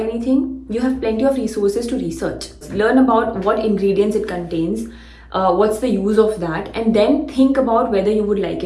you have plenty of resources to research. Learn about what ingredients it contains, what's the use of that, and then think about whether you would like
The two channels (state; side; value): identical; both; correlation 1.00